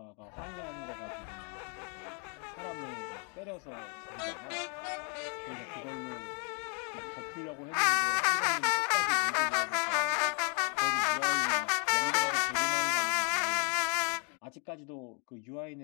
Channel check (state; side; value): quieter; right; 38.0 dB